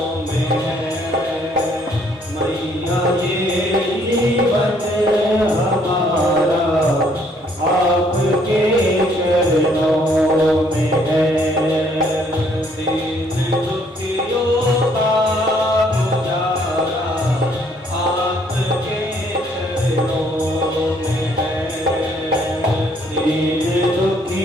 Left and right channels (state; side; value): normal; both; correlation 0.65